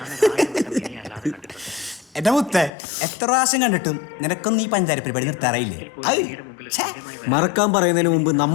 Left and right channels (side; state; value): right; drops out; at 2.7 s